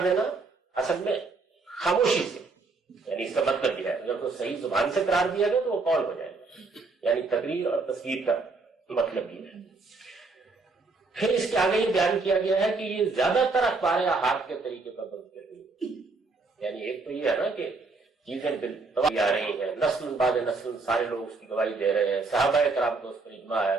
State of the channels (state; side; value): quieter; left; 3.9 dB